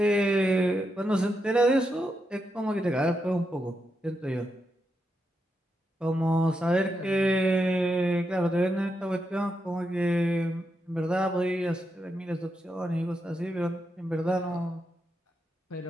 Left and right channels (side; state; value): both; normal; correlation 0.84